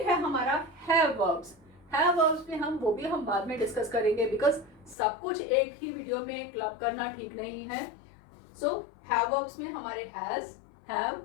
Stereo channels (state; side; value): drops out; right; at 5.0 s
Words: है हमारा हैव वर्ब्स। हैव वर्ब्स में वो भी हम बाद में डिस्कस करेंगे, बिकॉज सब कुछ एक ही वीडियो में क्लब करना ठीक नहीं है। सो हैव वर्ब्स में हमारे हैज, हैव,